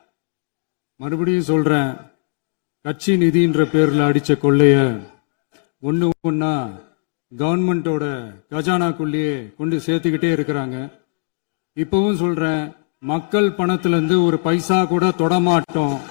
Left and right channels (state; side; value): silent; right; digital silence